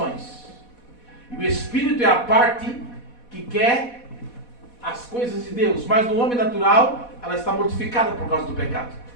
E o espírito é a parte que quer as coisas de Deus. Mas no homem natural, ela está mortificada por causa do pecado.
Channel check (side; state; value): right; late; 4.1 ms